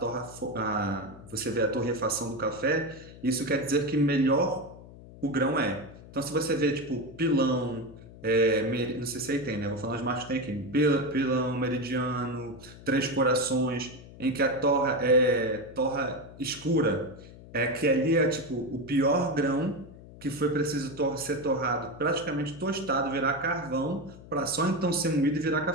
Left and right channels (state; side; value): noise; left; hum, 18 dB below the sound